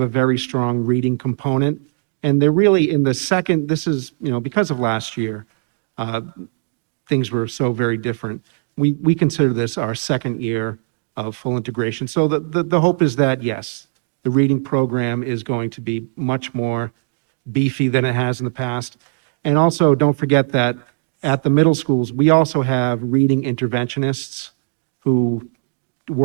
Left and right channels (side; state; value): left; silent; digital silence